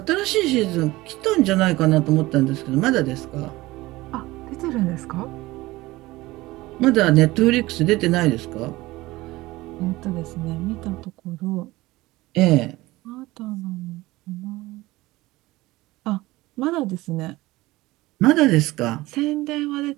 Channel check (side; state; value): left; quieter; 19.3 dB